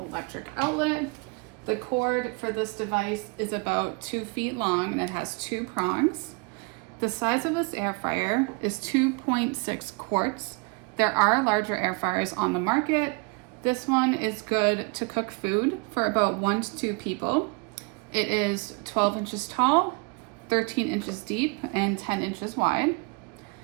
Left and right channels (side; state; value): left; quieter; 30.5 dB